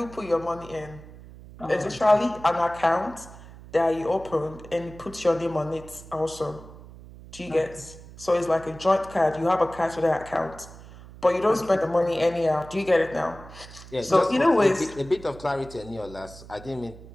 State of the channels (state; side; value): noise; right; hum, 18 dB below the sound